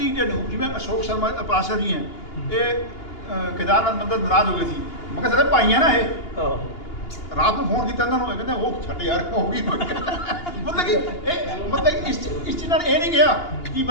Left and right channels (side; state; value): right; late; 2.8 ms